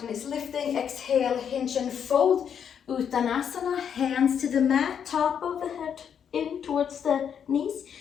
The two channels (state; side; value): quieter; right; 8.0 dB